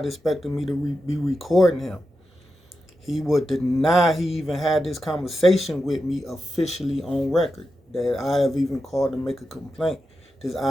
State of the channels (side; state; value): both; normal; correlation 0.89